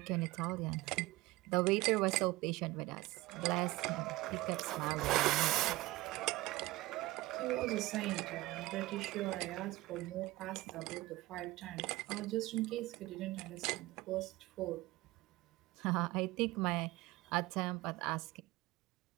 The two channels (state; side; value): quieter; left; 19.4 dB